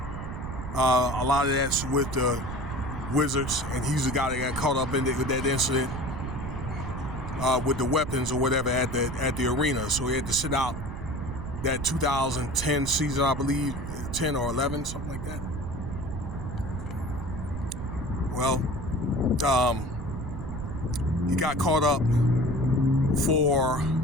A lot of that's with the Wizards, and he's the guy that got caught up in with that incident with the weapons or whatever at the arena. So he had to sit out that 2010 season, I believe, 10 or 11, something like that. Well, he got caught up for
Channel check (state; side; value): noise; right; rumble, 7 dB below the sound